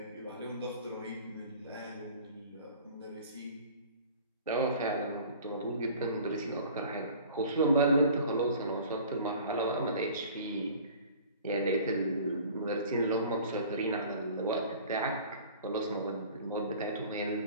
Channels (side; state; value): both; inverted; correlation -0.46